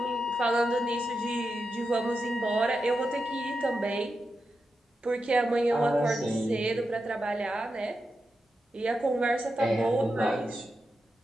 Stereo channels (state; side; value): normal; both; correlation 0.88